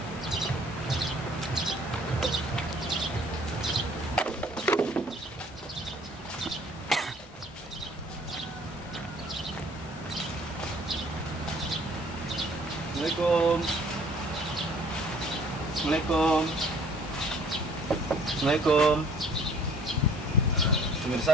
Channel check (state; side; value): normal; both; correlation 0.56